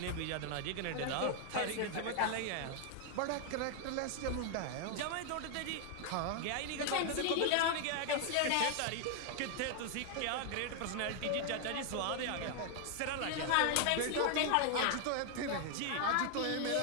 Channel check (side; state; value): both; different; correlation 0.00